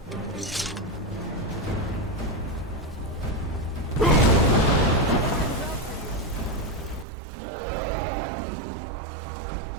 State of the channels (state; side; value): drops out; left; at 7.1 s